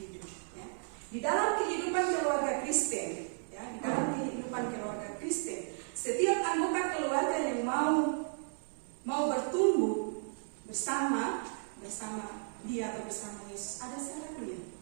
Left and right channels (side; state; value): left; silent; 55 dB below the other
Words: Ya. Di dalam kehidupan keluarga Kristen, ya, di dalam kehidupan keluarga Kristen, setiap anggota keluarga yang mau bertumbuh bersama dia atau bersama Yesus ada syaratnya,